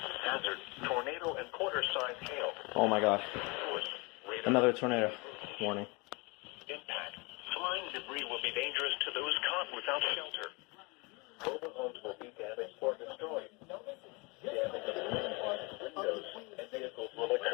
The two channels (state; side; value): quieter; right; 28.2 dB